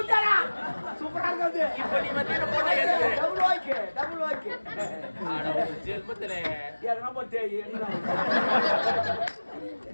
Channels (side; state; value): both; inverted; correlation -1.00